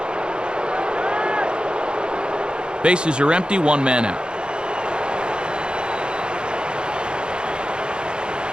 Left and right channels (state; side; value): late; left; 0.049 ms